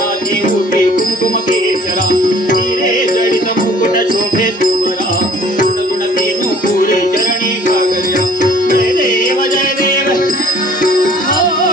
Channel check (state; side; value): normal; both; correlation 0.54